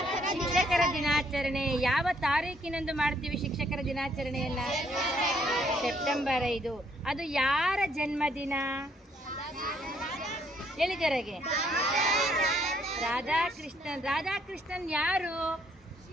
ಶಿಕ್ಷಕರ ದಿನಾಚರಣೆ ಯಾವ ತಾರೀಕಿನಂದು ಮಾಡ್ತೀವಿ? ಶಿಕ್ಷಕರ ದಿನಾಚರಣೆಯನ್ನ ಸೆಪ್ಟೆಂಬರ್ 5. ಅದು ಯಾರ ಜನ್ಮದಿನ? ಹೇಳಿ ಜೊರೆಗೆ. ರಾಧಾಕೃಷ್ಣನ್. ರಾಧಾಕೃಷ್ಣನ್ ಯಾರು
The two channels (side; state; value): both; normal; correlation 0.68